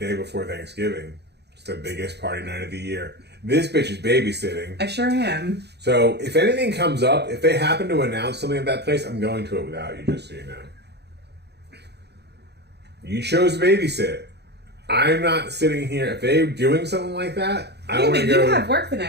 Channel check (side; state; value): left; late; 0.49 ms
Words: before Thanksgiving? It's the biggest party night of the year. This bitch is babysitting. I sure am. So if anything comes up, if they happen to announce something at that place, I'm going to it without you, just so you know. You chose to babysit. I'm not sitting here. If they're doing something like that, I want to go. You have work the